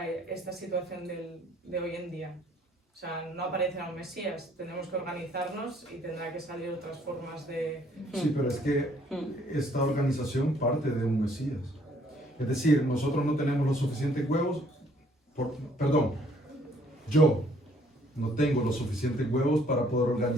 esta situación de hoy en día? O sea, no aparecerá un Mesías, tenemos que organizarnos y tendrá que salir otras formas de... Sí, pero es que esta organización parte de un Mesías. Es decir, nosotros no tenemos los suficientes huevos, perdón, yo no tengo los suficientes huevos para poder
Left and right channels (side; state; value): both; normal; correlation 0.63